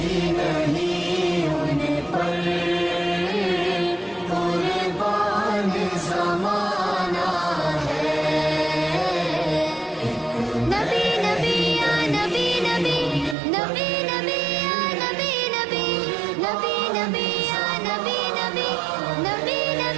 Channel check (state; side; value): drops out; left; at 13.4 s